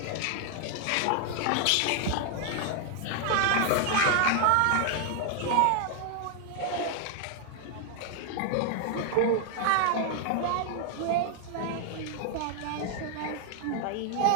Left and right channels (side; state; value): both; different; correlation 0.00